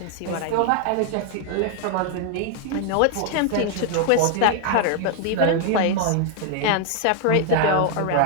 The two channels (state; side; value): different; both; correlation 0.00